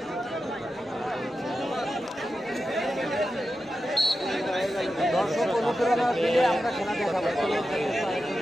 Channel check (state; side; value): normal; both; correlation 0.91